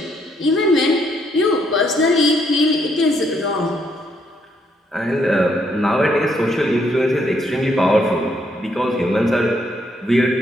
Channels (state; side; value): normal; both; correlation 0.72